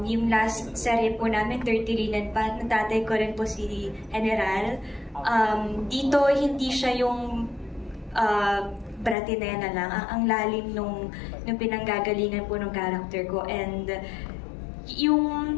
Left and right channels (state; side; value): drops out; right; at 9.2 s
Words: Yung last serye po namin, 30 Linen pa, natatay ko rin po si General. Dito, hindi siya yung bratinena lang. Ang lalim nung pinanggagalingan po ng character ko. And yung